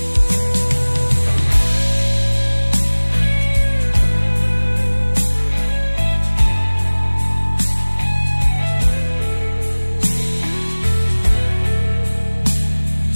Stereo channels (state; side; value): inverted; both; correlation -1.00